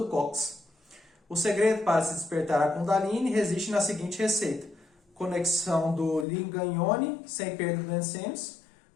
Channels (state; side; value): drops out; right; at 6.2 s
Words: cóccix. O segredo para se despertar a Kundalini reside na seguinte receita: conexão do Lingam Yoni, sem perda do sêmis,